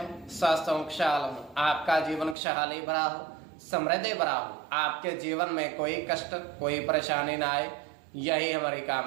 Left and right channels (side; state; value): left; drops out; at 2.4 s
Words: स्वस्थ हों, खुशहाल हों, आपका जीवन खुशहाली भरा हो, समृद्धि भरा हो, आपके जीवन में कोई कष्ट कोई परेशानी ना आए, यही हमारी